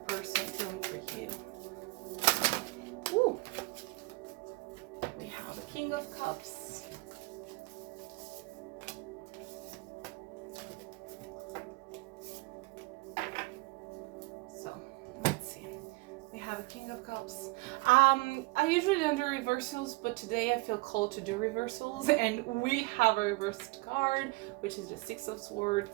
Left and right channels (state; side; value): quieter; left; 24.8 dB